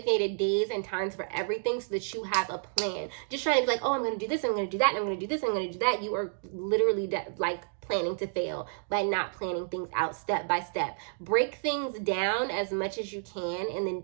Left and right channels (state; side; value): silent; left; digital silence